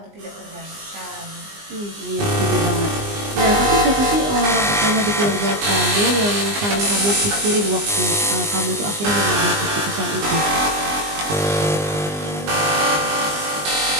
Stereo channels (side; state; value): left; late; 20 ms